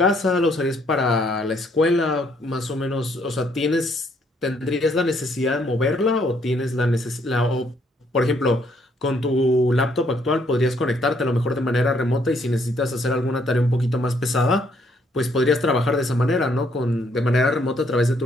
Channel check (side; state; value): both; normal; correlation 0.69